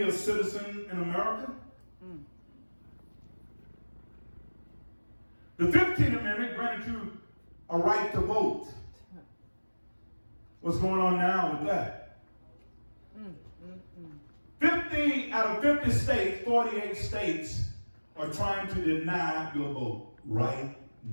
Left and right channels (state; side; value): inverted; both; correlation -1.00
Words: a citizen in America? The 15th Amendment granted you a right to vote. What's going on now with that? 50 out of 50 states, 48 states are trying to deny your vote right